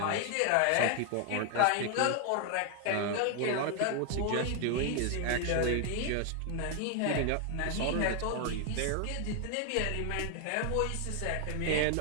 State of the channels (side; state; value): both; different; correlation 0.00